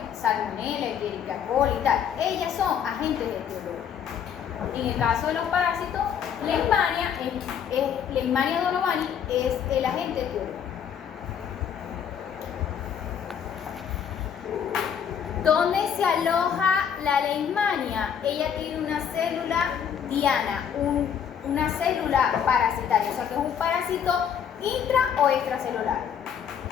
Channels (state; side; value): quieter; right; 8.1 dB